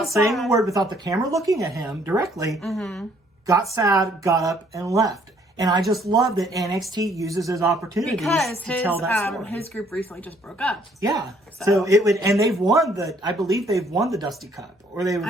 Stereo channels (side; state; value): both; normal; correlation 0.64